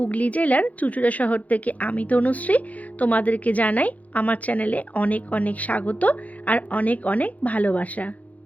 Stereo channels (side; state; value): right; late; 0.073 ms